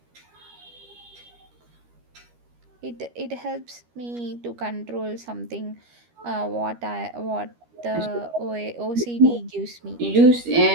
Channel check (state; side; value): late; left; 13 ms